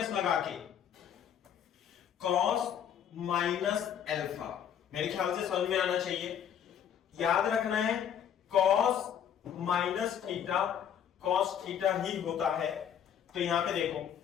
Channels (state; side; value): quieter; right; 9.0 dB